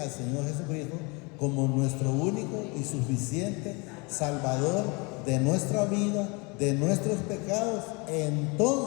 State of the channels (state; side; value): quieter; right; 29.3 dB